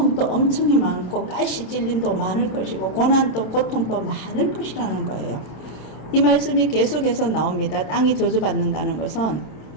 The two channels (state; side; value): late; right; 27 ms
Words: 엄청이 많고 가시 찔림도 많을 것이고 고난도 고통도 많을 것이라는 거예요. 이 말씀이 계속해서 나옵니다. 땅이 저주받는다는 것은